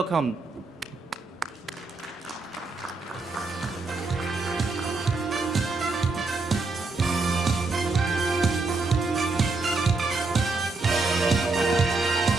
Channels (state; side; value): quieter; left; 3.6 dB